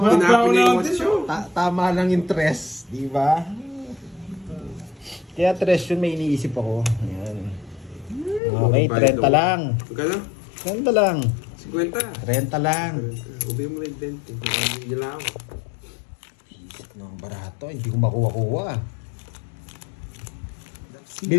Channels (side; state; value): right; drops out; at 8.4 s